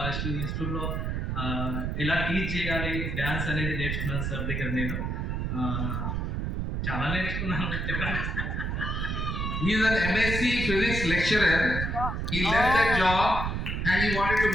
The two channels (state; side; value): noise; right; rumble, 1 dB below the sound